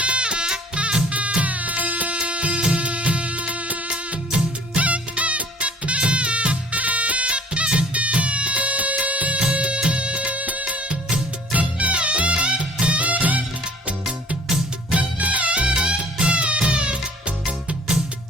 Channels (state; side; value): normal; both; correlation 0.51